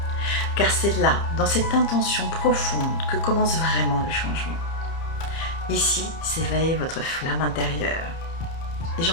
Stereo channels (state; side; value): late; right; 30 ms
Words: Car c'est là, dans cette intention profonde, que commence vraiment le changement. Ici s'éveille votre flamme intérieure. Et